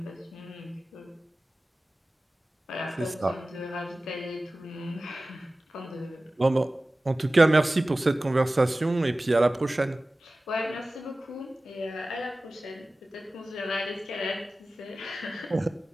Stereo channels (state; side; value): normal; both; correlation 0.96